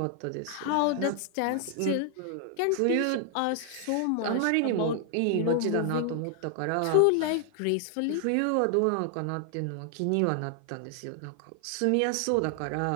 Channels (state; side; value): different; both; correlation 0.00